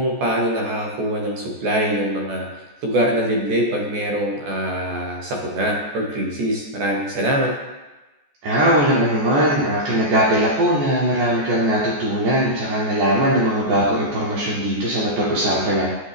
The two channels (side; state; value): left; late; 14 ms